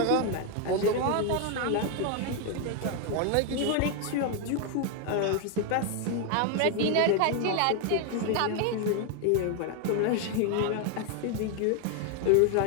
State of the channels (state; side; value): different; both; correlation 0.01